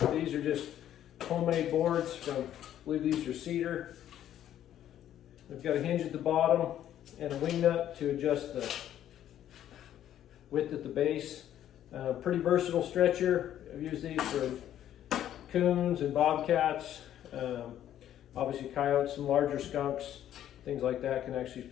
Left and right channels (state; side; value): quieter; right; 11.3 dB